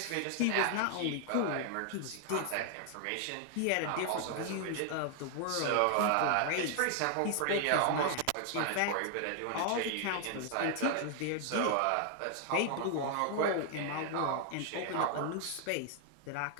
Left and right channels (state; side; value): different; both; correlation 0.00